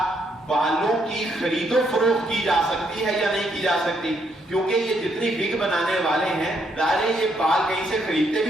بالوں کی خرید و فروخت کی جا سکتی ہے یا نہیں کی جا سکتی، کیونکہ یہ جتنی وگ بنانے والے ہیں ظاہر یہ بال کہیں سے خریدتے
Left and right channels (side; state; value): both; normal; correlation 0.74